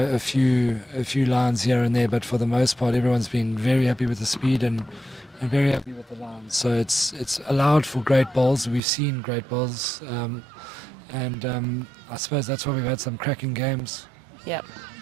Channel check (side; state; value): left; drops out; at 8.8 s